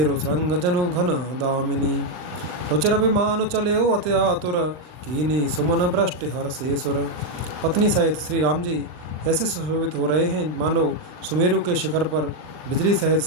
श्रृंग जनु घन दामिनी। रुचिर विमान चले अति आतुर, कीनी सुमन भ्रष्ट हर शेसुर। पत्नी सहित श्री राम जी ऐसे सुशोभित हो रहे हैं मानो सुमेरु के शिखर पर बिजली सहित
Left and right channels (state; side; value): late; left; 39 ms